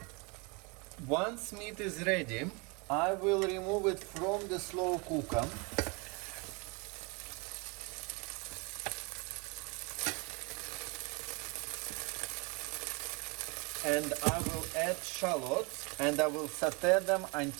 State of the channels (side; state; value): left; quieter; 30.1 dB